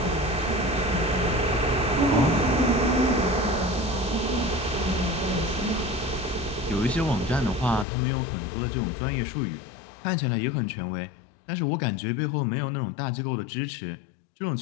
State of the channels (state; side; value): drops out; right; at 7.9 s